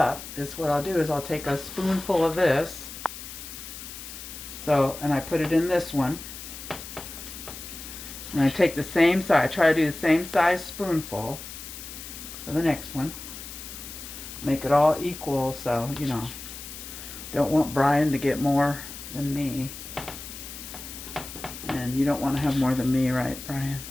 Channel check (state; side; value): noise; left; hiss, 11 dB below the sound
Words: is what I'll do is I'll take a spoonful of this. So, and I put it in this one. And I take the same size, I try to do the same size spoonful for the next one. Make it all equal, so, don't want Brian to get more than me. And you don't want to have more than me, right, Brian?